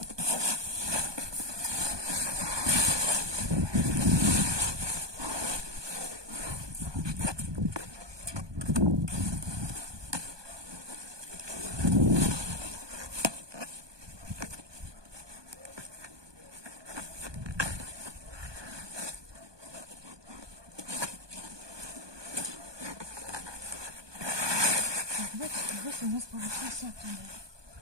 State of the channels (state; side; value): late; left; 1.2 ms